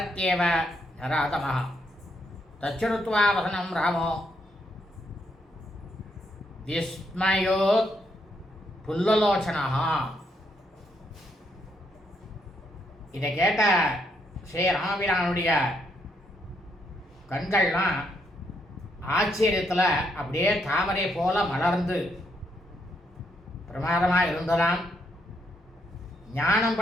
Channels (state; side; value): normal; both; correlation 0.76